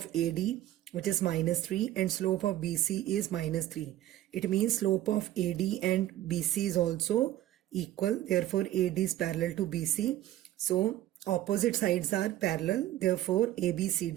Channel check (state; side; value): quieter; left; 13.6 dB